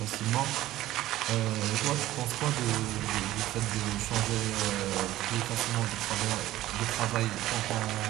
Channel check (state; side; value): quieter; left; 15.1 dB